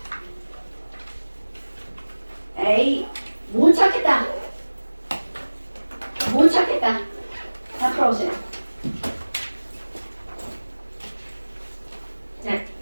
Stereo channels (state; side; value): inverted; both; correlation -1.00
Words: 에이, 못 찾겠다. 다 풀어보세요. 네.